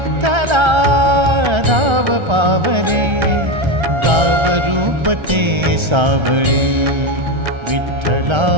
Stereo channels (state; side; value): late; left; 1.3 ms